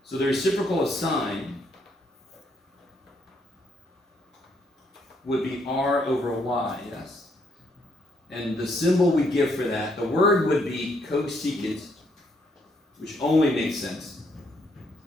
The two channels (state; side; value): normal; both; correlation 0.72